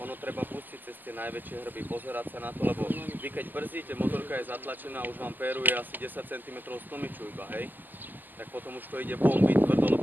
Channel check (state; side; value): late; left; 0.087 ms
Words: treba pustiť cez tie najväčšie hrby, pozerať sa na to, lebo vy keď brzdíte, motorka je zatlačená, už vám péruje asi 10 cm z tlmiču iba, hej. Tak potom už to ide bombiť tvrdo,